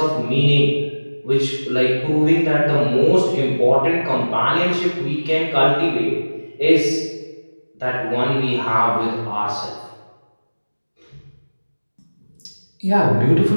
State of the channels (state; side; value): inverted; both; correlation -1.00